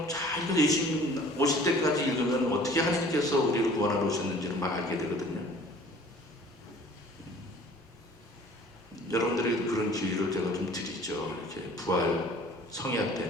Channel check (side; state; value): both; normal; correlation 0.50